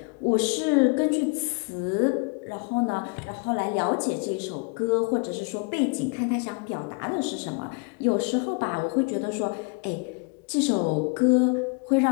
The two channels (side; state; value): right; quieter; 31.9 dB